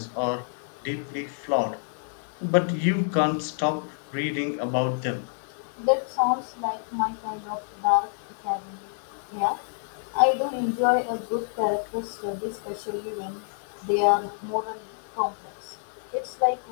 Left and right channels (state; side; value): silent; right; digital silence